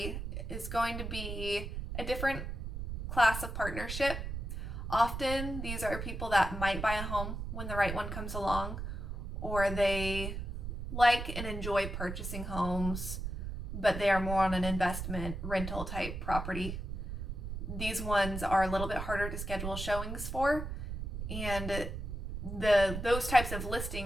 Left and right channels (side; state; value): right; noise; rumble, 5 dB below the sound